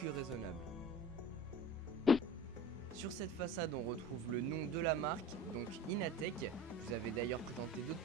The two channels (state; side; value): normal; both; correlation 0.39